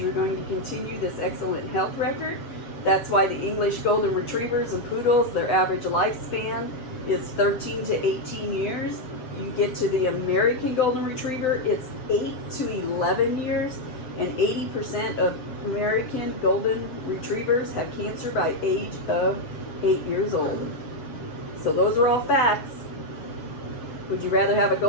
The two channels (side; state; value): right; late; 7.7 ms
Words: going to continue this excellent health record. That's why the English Golden Retrievers and Poodles, their average lifespan is 13 to 18 years. You get to the American Golden Retriever, it's 8 to 11 years, and 80% of American Golden Retrievers have cancer by age of 8 years old. So those are all facts. Would you rather have a